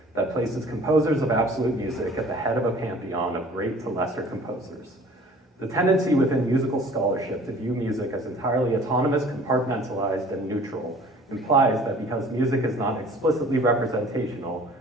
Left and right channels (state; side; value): normal; both; correlation 0.49